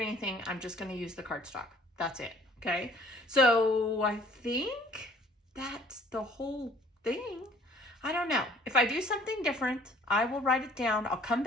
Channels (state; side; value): normal; both; correlation 0.56